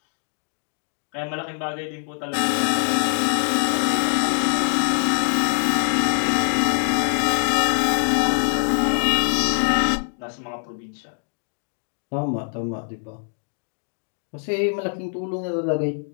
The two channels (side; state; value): right; silent; 63 dB below the other